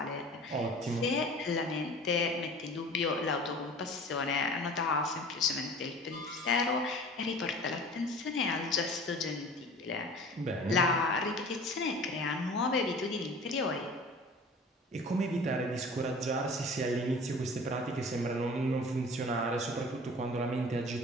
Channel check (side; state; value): both; normal; correlation 0.42